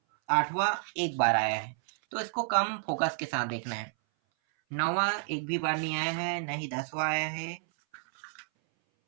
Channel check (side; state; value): left; silent; 57 dB below the other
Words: आठवां एक बार आया है, तो इसको कम फोकस के साथ देखना है। नौवां एक भी बार नहीं आया है, नहीं 10वां आया है।